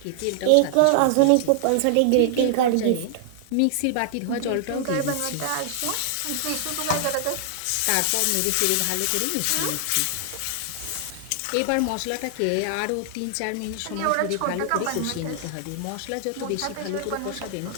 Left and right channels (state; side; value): different; both; correlation 0.00